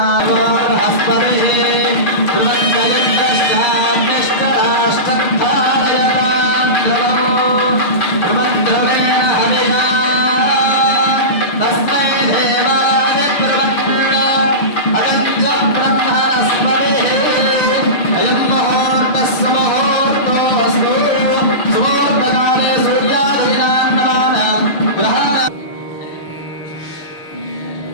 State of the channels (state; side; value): late; right; 6.6 ms